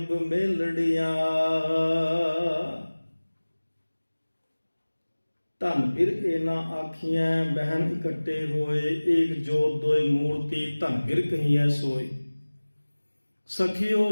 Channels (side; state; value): both; inverted; correlation -1.00